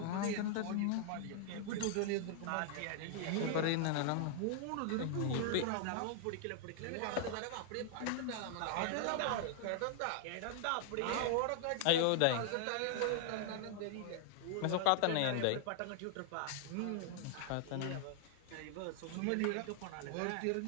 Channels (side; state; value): both; different; correlation 0.00